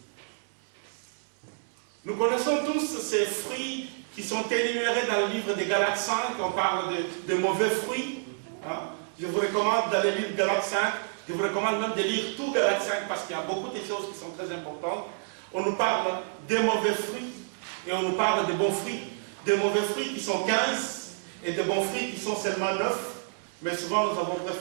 Nous connaissons tous ces fruits qui sont énumérés dans le livre des Galates 5, on parle de mauvais fruits. Hein? Je vous recommande d'aller lire Galates 5, je vous recommande même de lire tout Galates 5 parce qu'il y a beaucoup de choses qui sont très importantes. On nous parle des mauvais fruits et on nous parle de bons fruits. Des mauvais fruits qui sont 15 et de bons fruits qui sont seulement 9. Mais souvent nous avons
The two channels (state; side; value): silent; left; digital silence